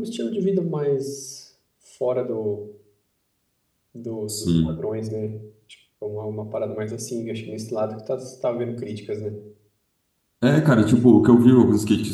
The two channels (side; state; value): both; identical; correlation 1.00